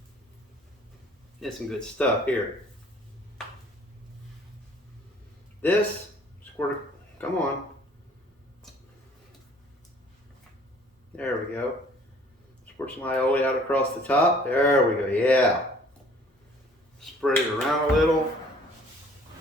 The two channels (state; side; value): normal; both; correlation 0.55